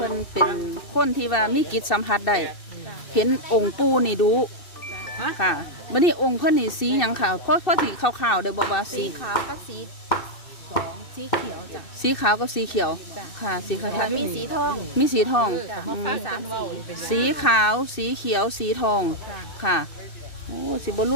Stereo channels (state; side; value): late; right; 2.7 ms